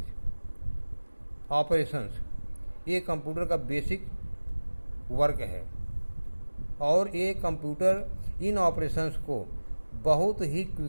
operations, ये कंप्यूटर का बेसिक वर्क है, और ये कंप्यूटर इन ऑपरेशंस को बहुत ही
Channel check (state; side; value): inverted; both; correlation -1.00